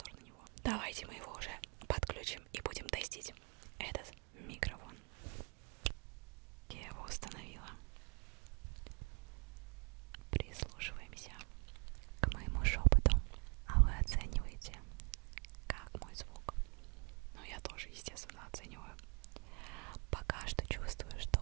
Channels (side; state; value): left; quieter; 33.6 dB